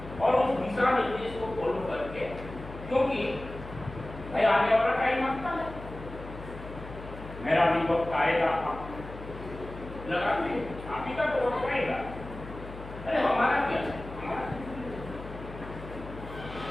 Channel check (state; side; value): noise; left; hum, 13 dB below the sound